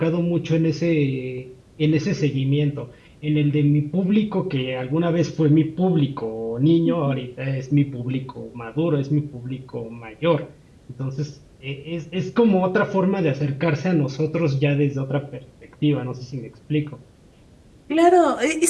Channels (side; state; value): both; identical; correlation 1.00